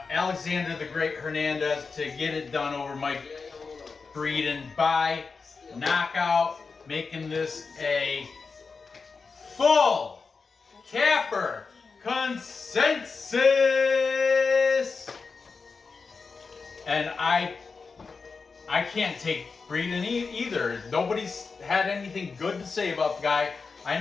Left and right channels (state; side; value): quieter; right; 4.7 dB